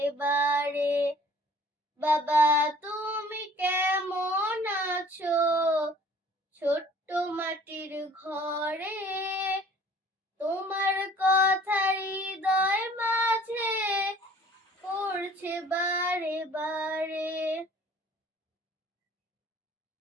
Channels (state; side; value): normal; both; correlation 0.52